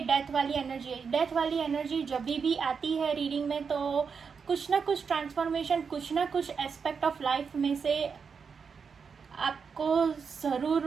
डेथ वाली एनर्जी है। डेथ वाली एनर्जी जब भी आती है रीडिंग में, तो कुछ ना कुछ ट्रांसफॉर्मेशन, कुछ ना कुछ एस्पेक्ट ऑफ लाइफ में से आपको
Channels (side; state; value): left; quieter; 5.9 dB